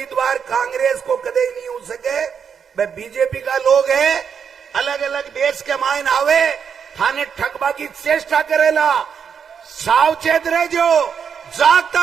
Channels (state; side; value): quieter; left; 7.0 dB